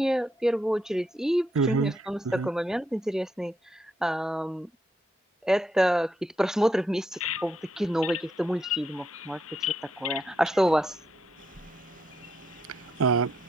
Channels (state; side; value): normal; both; correlation 0.78